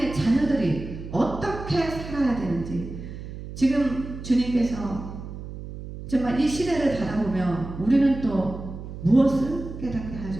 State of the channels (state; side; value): noise; right; hum, 11 dB below the sound